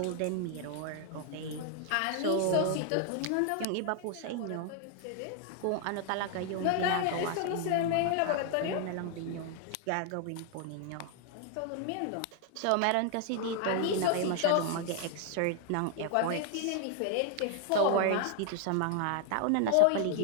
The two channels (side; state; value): both; different; correlation 0.00